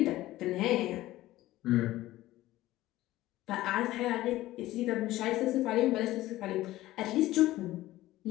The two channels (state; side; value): quieter; right; 16.2 dB